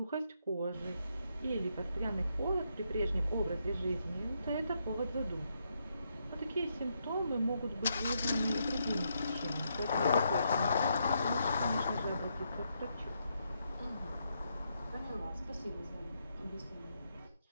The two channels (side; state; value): both; inverted; correlation -0.79